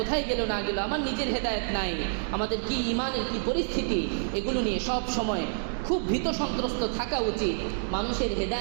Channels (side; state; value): left; silent; digital silence